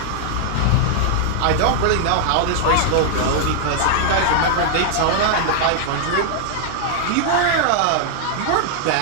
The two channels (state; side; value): different; both; correlation 0.00